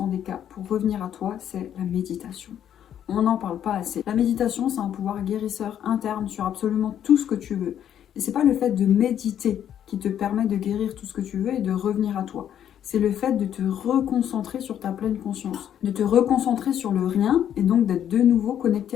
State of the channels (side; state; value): right; quieter; 9.9 dB